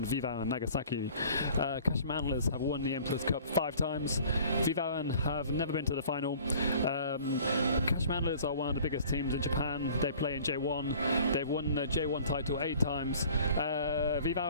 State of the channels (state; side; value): inverted; both; correlation -0.49